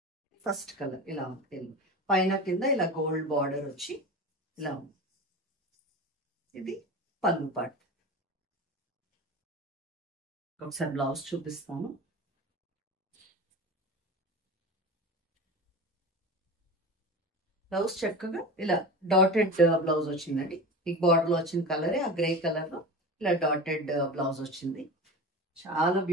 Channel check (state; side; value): normal; both; correlation 0.30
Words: ఫస్ట్ కలర్ ఇలా ఉంది. పైన కింద ఇలా గోల్డ్ బార్డర్ వచ్చి ఇలా ఉంది. ఇది పళ్ళు పార్ట్. ఒకసారి బ్లౌజ్ చూపిస్తాను. బ్లౌజ్ చక్కగా ఇలా డాటెడ్ బ్లౌజ్ వచ్చిందండి. ఈ బార్డర్ లో వచ్చిన కలరే ఆ గ్రే కలర్ లో ఇలా డాటెడ్ బ్లౌజ్ వచ్చింది. చాలా